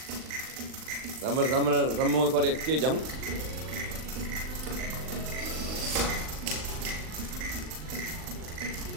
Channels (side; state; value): left; late; 39 ms